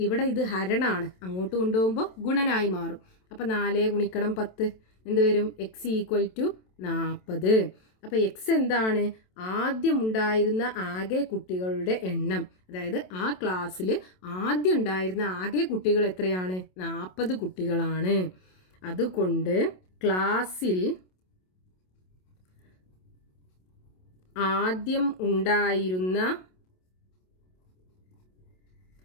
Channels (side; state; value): right; late; 27 ms